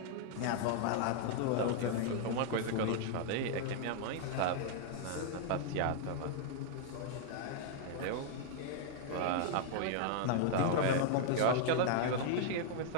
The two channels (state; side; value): different; both; correlation 0.00